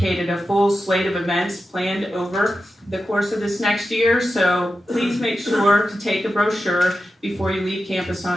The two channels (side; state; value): both; normal; correlation 0.91